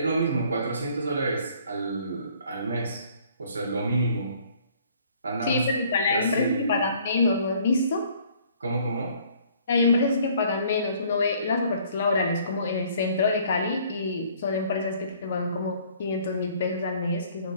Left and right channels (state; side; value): inverted; both; correlation -0.59